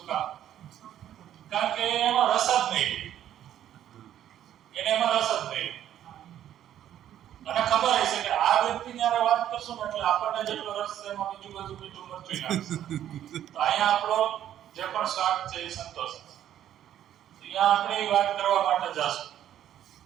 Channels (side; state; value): left; quieter; 11.2 dB